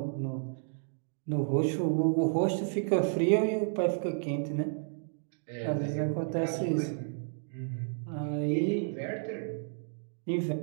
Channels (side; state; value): left; silent; digital silence